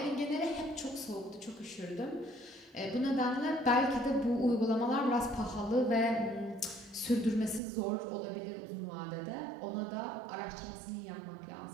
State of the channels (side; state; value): left; drops out; at 7.6 s